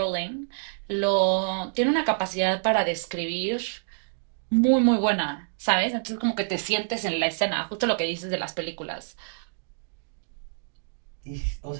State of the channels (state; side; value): silent; left; digital silence